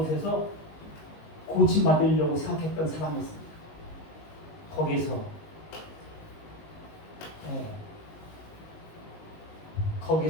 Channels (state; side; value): late; right; 19 ms